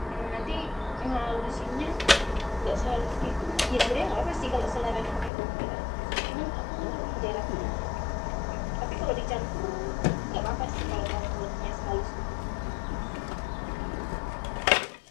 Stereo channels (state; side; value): drops out; right; at 5.3 s